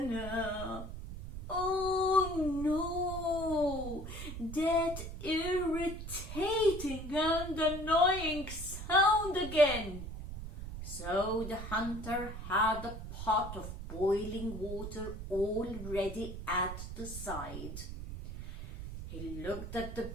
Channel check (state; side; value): noise; right; rumble, 8 dB below the sound